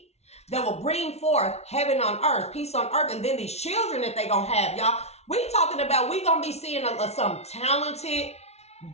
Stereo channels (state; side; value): late; right; 0.31 ms